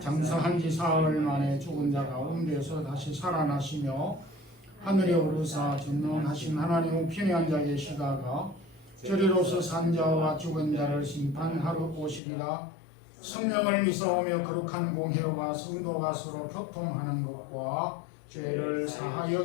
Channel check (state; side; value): drops out; right; at 12.2 s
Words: 지 사흘 만에 죽은 자 가운데서 다시 살아나시며 하늘에 오르사 전능하신 하나님 우편에 앉아 계시다가 저리로서 산 자와 죽은 자를 심판하러 오시리라. 성령을 믿사오며 거룩한 공회와 성도가 서로 교통하는 것과 죄를 사하여